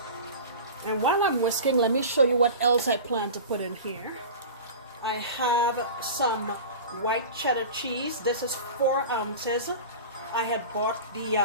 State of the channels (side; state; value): both; inverted; correlation -0.33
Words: And while I'm whisking, let me show you what else I plan to put in here. I have some white cheddar cheese. This is 4 ounces. I had bought